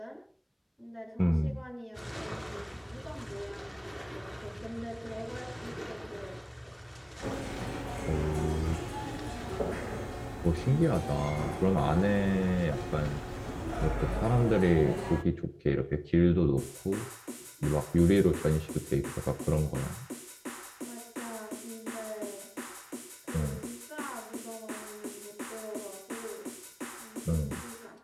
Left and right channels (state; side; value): identical; both; correlation 1.00